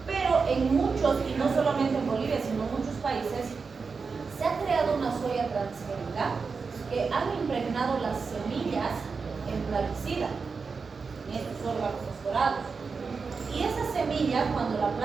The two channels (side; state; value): left; quieter; 4.9 dB